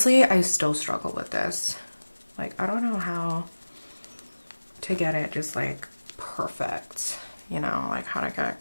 I still struggle with this. Like, I don't know how to get it just like perfect, you know, like how to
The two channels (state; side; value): inverted; both; correlation -1.00